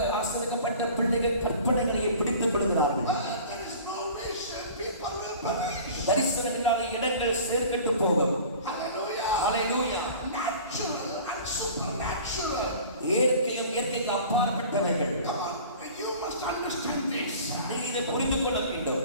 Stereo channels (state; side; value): inverted; both; correlation -0.43